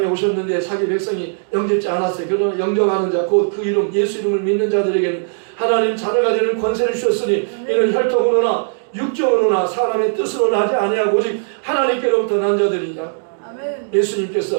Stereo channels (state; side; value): silent; left; digital silence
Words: 오셨는데 자기 백성이 영접지 않았어요. 그러나 영접하는 자, 곧 그 이름, 예수 이름을 믿는 자들에게는 하나님 자녀가 되는 권세를 주셨으니 이는 혈통으로나 육정으로나 사람의 뜻으로 나지 아니하고 오직 하나님께로부터 난 자들이니라.